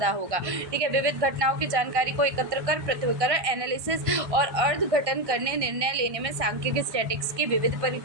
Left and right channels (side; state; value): left; late; 1.6 ms